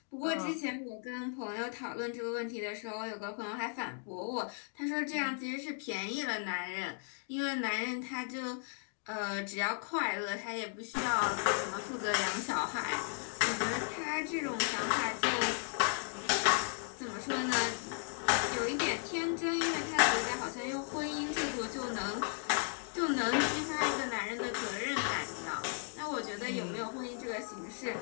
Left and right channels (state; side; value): silent; right; 54 dB below the other